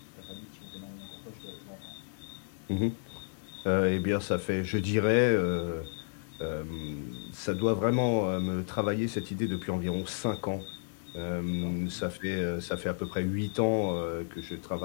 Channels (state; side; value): silent; right; digital silence